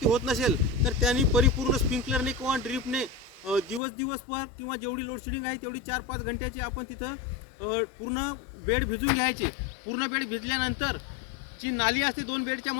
होत नसेल तर त्यांनी परिपूर्ण स्प्रिंकलरने किंवा ड्रीपने दिवस पर किंवा जेवढी लोडशेडिंग आहे तेवढी 4-5 घंट्याची आपण तिथं पूर्ण बेड भिजून घ्यायचे. पूर्ण बेड भिजल्यानंतर जी नाली असते 2 बेडच्या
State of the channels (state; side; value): drops out; right; at 3.8 s